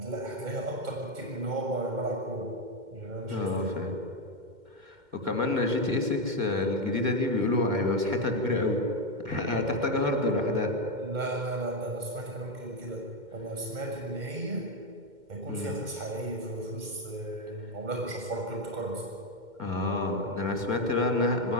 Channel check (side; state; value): left; late; 2.1 ms